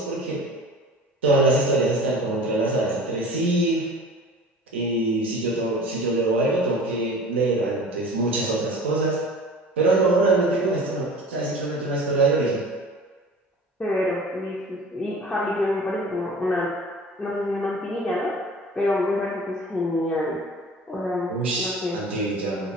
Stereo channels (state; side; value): normal; both; correlation 0.41